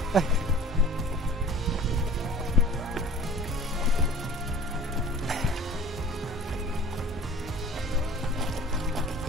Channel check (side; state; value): both; normal; correlation 0.45